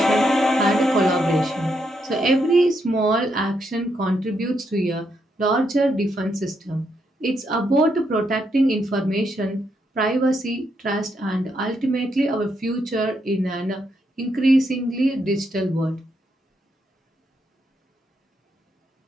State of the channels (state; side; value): normal; both; correlation 0.79